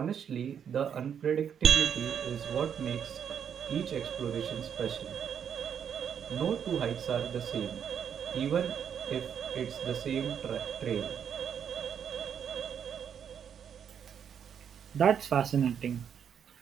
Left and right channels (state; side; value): quieter; left; 8.1 dB